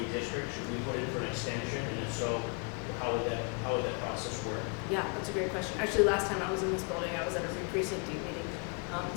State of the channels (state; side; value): quieter; right; 36.0 dB